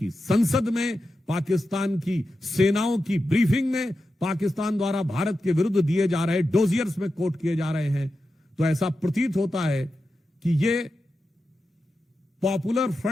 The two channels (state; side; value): normal; both; correlation 0.90